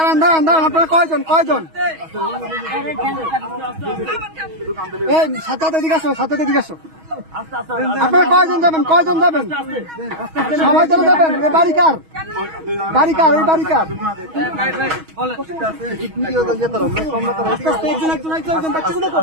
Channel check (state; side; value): late; left; 6.3 ms